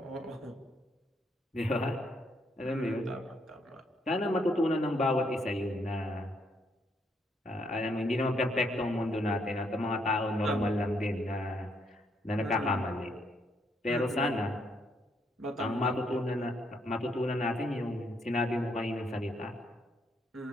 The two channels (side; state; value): both; normal; correlation 0.73